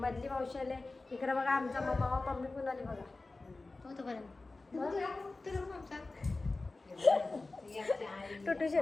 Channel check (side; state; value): right; quieter; 3.4 dB